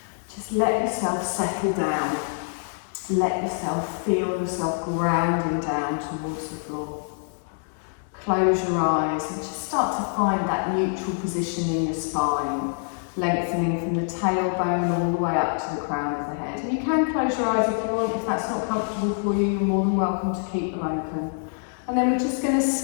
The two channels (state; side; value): silent; right; 61 dB below the other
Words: Just let yourself settle down. Let yourself feel yourself grounding down towards the floor. Close your eyes and just start to find that neutral position in your spine, lengthening from the tailbone all the way up to the crown of the head. And you can close your eyes if you want. If that's not comfortable for you, you're more than welcome to keep them open. And then we're just going to